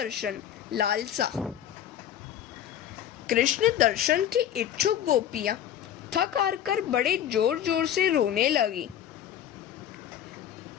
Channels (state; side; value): quieter; right; 10.4 dB